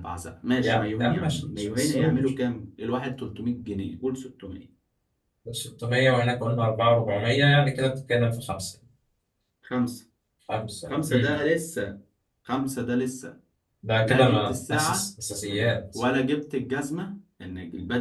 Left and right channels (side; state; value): both; identical; correlation 1.00